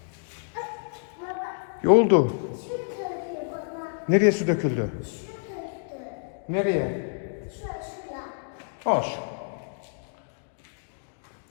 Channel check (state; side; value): silent; right; digital silence